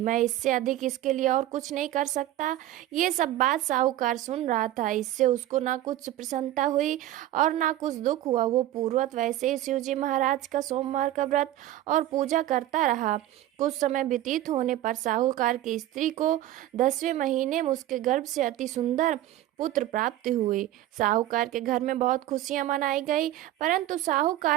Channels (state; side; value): quieter; left; 14.0 dB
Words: इससे अधिक इसके लिए और कुछ नहीं कर सकता। ये सब बात साहूकार सुन रहा था। इससे उसको ना कुछ प्रसन्नता हुई और ना कुछ दुख हुआ। वो पूर्वत वैसे ही शिवजी महाराज का सोमवार का व्रत और पूजा करता रहा। कुछ समय व्यतीत होने पर साहूकार की स्त्री को 10वें महीने में उसके गर्भ से अति सुंदर पुत्र प्राप्त हुई। साहूकार के घर में बहुत खुशियां मनाई गई, परंतु